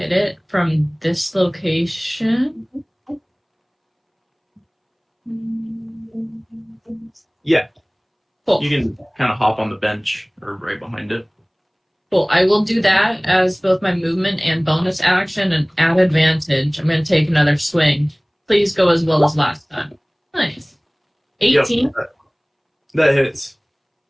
it from this location? Yeah, Cool. you can kind of hop on the bench or right behind it. Cool. I will do that as both my movement and bonus action and add advantage. I'm going to take another swing. Please go as well as last time. Nice. 18. Yep, that hits.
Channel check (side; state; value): both; identical; correlation 1.00